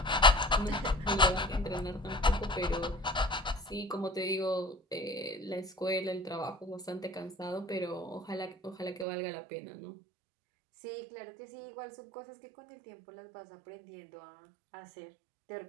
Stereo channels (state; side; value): drops out; left; at 9.1 s